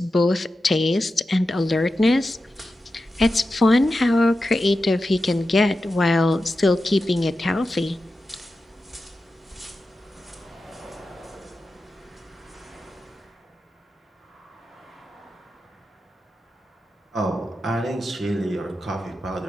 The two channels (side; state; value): both; normal; correlation 0.92